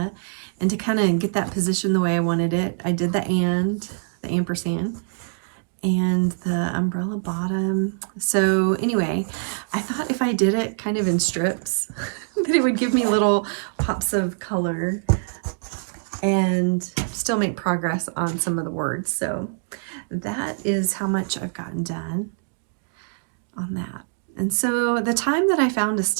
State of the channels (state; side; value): silent; left; digital silence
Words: and to kind of get that position the way I wanted it, I did the ampersand, and the umbrella bottom. So anyway, I thought if I did it kind of in strips, that it would give me little pops of color and still make progress on some of the words. So that is how much I've gotten done on that. And so the time that I found to